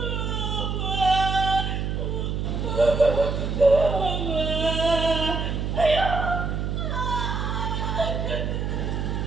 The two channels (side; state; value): right; noise; hum, 1 dB below the sound